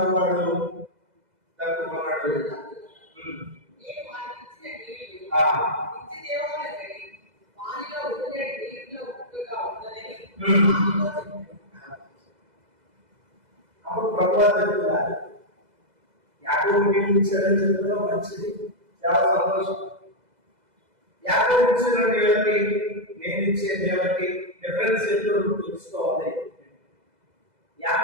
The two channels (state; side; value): late; left; 2.0 ms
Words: దక్కున్నాడు. అప్పుడు ప్రభువా చెప్తున్నారు, యాకోబు నీళ్ళు ఇచ్చాడని చెప్తున్నా, మంచిది, చాలా సంతోషం. యాకోబు ఇచ్చిన నీళ్ళకి నేను ఇచ్చే నీళ్ళకి డిఫరెన్స్ ఎప్పుడు తెలుసుకోవాలి.